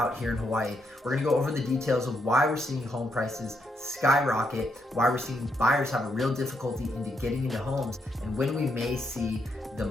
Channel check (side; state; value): both; normal; correlation 0.79